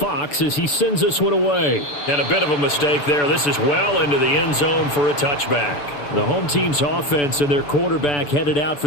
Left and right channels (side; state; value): right; late; 6.9 ms